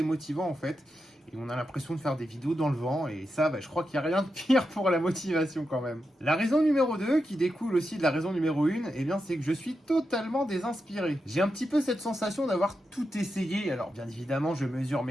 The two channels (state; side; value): normal; both; correlation 0.87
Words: en fait. Et on a l'impression de faire des vidéos dans le vent, et ça, je crois qu'il n'y a rien de pire pour la motivation quand même. La raison numéro 2, qui découle aussi de la raison numéro 1, eh bien c'est que je suis totalement désinspiré. J'ai un petit peu cette sensation d'avoir tout essayé, alors bien évidemment je mesure